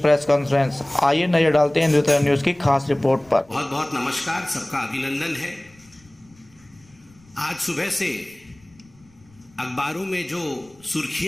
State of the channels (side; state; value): left; noise; rumble, 29 dB below the sound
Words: कॉन्फ्रेंस। आइए नजर डालते हैं हिंदुस्तान न्यूज की खास रिपोर्ट पर। बहुत बहुत नमस्कार, सबका अभिनंदन है। आज सुबह से अखबारों में जो